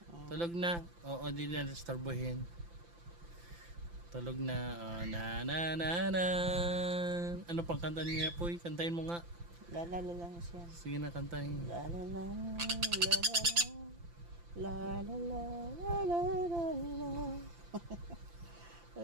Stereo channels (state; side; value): late; left; 5.9 ms